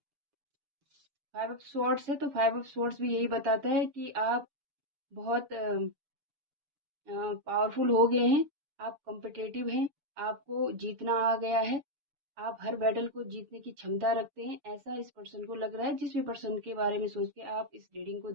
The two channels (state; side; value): late; left; 6.9 ms